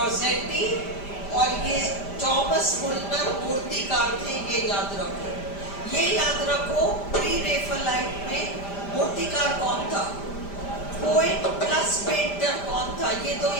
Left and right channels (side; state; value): right; late; 5.0 ms